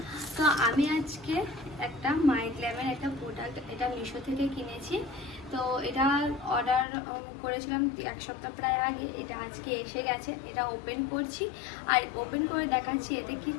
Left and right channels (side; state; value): right; drops out; at 6.9 s